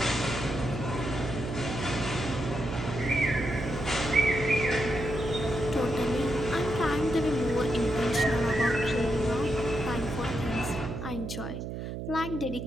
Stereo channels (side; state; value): right; noise; hum, 6 dB below the sound